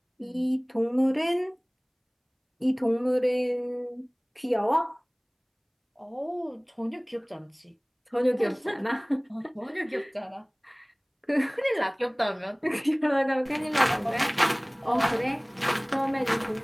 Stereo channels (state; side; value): identical; both; correlation 1.00